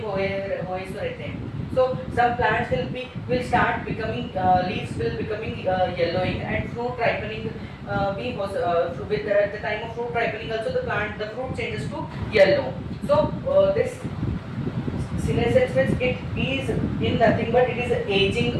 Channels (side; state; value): both; identical; correlation 1.00